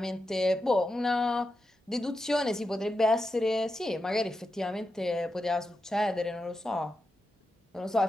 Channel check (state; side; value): normal; both; correlation 0.88